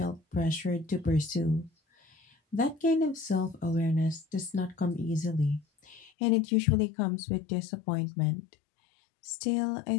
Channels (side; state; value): right; drops out; at 6.1 s